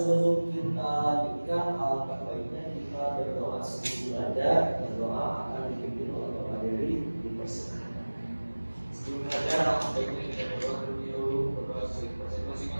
kita lanjutkan, alangkah baiknya kita berdoa sebelum belajar. Berdoa akan dipimpin oleh Bapak Dewi di persilakan. Sebelum belajar, baiknya kita berdoa terlebih dahulu, berdoa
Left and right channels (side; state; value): both; inverted; correlation -1.00